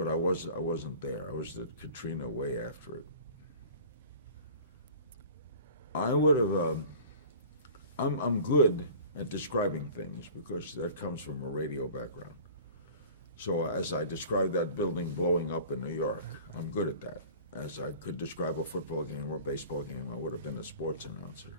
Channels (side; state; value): both; inverted; correlation -0.42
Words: I wasn't there. I was at Katrina way after it. I would have. I'm good at describing things because that comes from a radio background. So as I described that building blowing up in New York, I'm good at that. As I could describe a football game or a baseball game, I would have been a sports announcer.